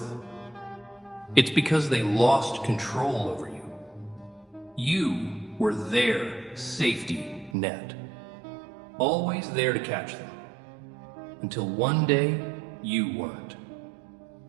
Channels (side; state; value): left; drops out; at 7.6 s